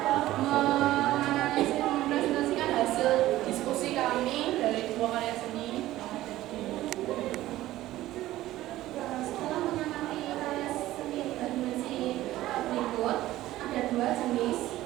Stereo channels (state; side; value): quieter; left; 15.5 dB